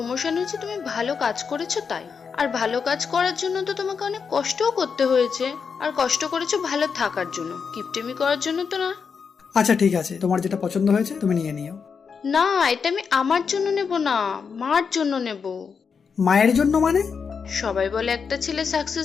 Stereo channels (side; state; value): right; quieter; 6.0 dB